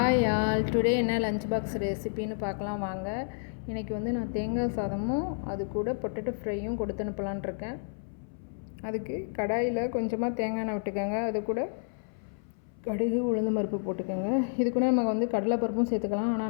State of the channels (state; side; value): silent; right; 58 dB below the other